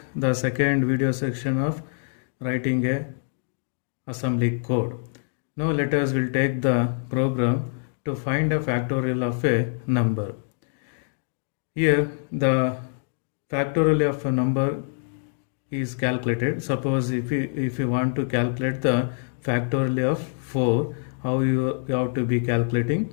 the second video section of writing a assembly code. Now let us will take the program to find a factorial of a number. Here the factorial of a number is calculated. Suppose if you want to calculate the factorial of 4, how you have to be calculating?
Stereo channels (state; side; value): silent; right; 62 dB below the other